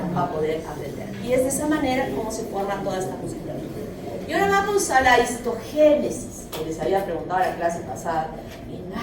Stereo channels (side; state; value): both; identical; correlation 1.00